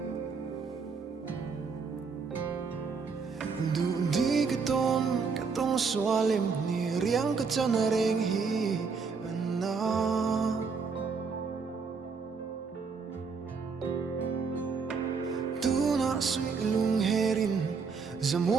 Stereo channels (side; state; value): left; quieter; 5.2 dB